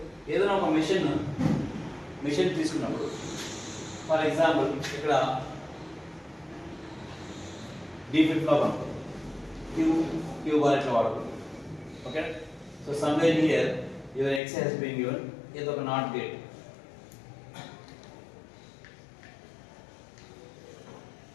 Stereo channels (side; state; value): right; drops out; at 14.4 s